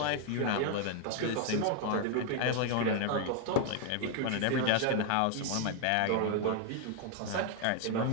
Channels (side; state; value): both; different; correlation 0.00